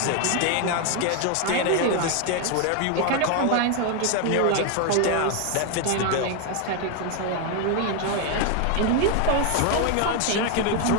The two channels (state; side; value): different; both; correlation 0.01